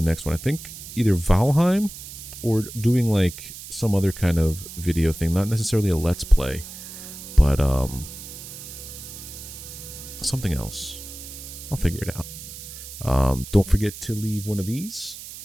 next one. I think either Valheim or doing, like, some other kind of video thing. Not necessarily a Let's Play, but, something else. I'll figure it out. Don't forget to leave one of these.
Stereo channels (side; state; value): right; noise; hiss, 13 dB below the sound